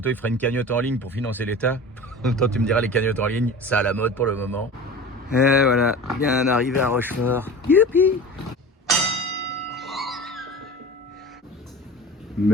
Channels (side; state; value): both; normal; correlation 0.36